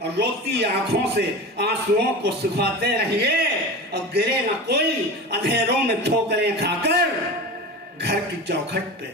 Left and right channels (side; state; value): both; normal; correlation 0.30